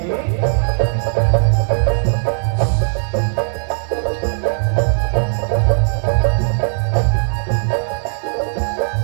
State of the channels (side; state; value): left; silent; digital silence